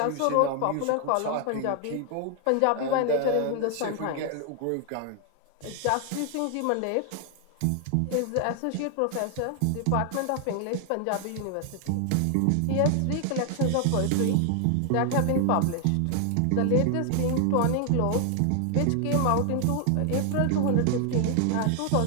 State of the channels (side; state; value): both; different; correlation 0.00